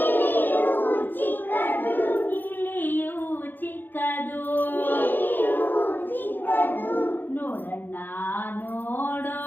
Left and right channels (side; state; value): right; late; 0.091 ms